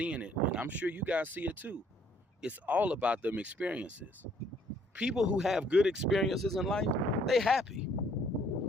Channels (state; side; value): normal; both; correlation 0.63